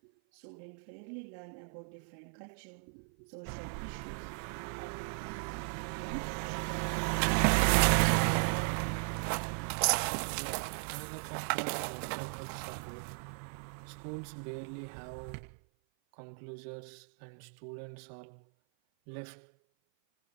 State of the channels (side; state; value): left; silent; 54 dB below the other